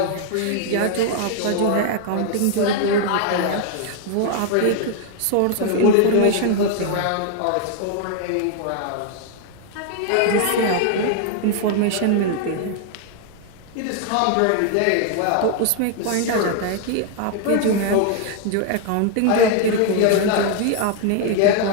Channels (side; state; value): both; different; correlation 0.00